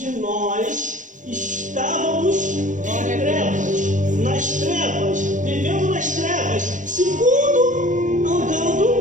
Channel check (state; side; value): late; left; 0.37 ms